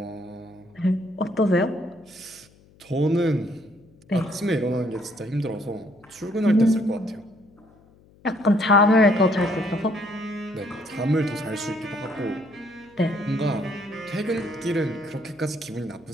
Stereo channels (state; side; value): noise; left; hum, 28 dB below the sound